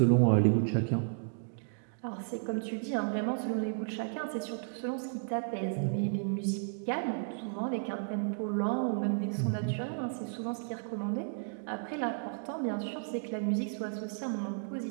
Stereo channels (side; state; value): left; silent; digital silence